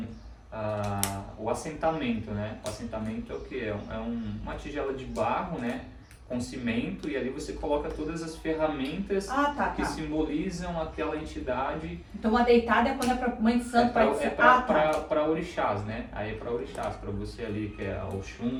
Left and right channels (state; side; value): identical; both; correlation 1.00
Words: o assentamento, né? O assentamento é o que? Uma tigela de barro, né? Com cimento, e ali você coloca todas as ferramentas que simbolizam aquela entidade. Então a deitada é quando é para Mãe de Santo, Pai de Santo. Para orixás, né? Aí é para orixás, para você ali que é